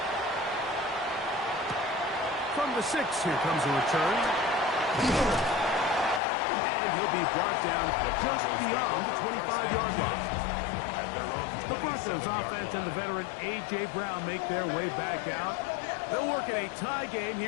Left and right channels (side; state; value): right; drops out; at 6.2 s